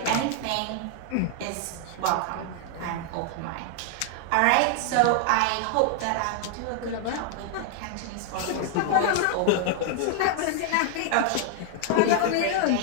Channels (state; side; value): different; both; correlation 0.00